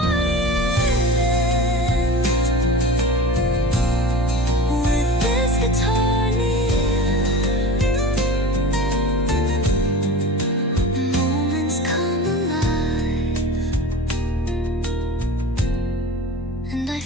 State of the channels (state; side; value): normal; both; correlation 0.35